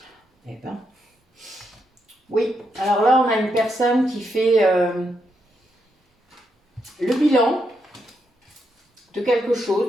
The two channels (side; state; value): both; normal; correlation 0.81